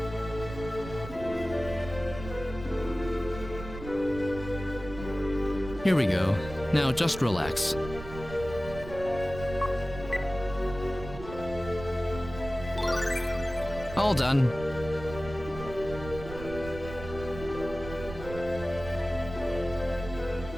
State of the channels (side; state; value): right; noise; rumble, 12 dB below the sound